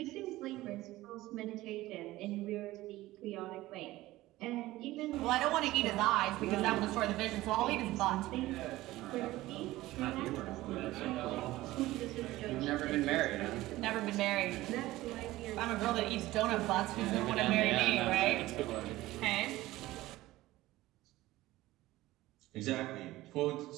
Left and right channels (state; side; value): quieter; left; 17.3 dB